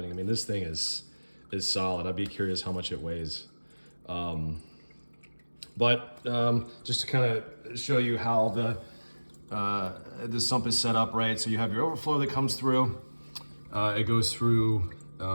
I mean, this thing is solid. I'd be curious how much it weighs. But just to kind of show you how the sump is set up, right? So you have your overflow that comes through. It goes through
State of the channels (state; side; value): inverted; both; correlation -1.00